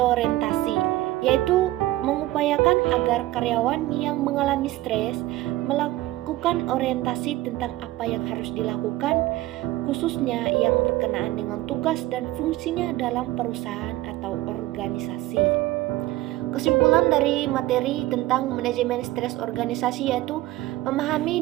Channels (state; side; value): quieter; left; 16.9 dB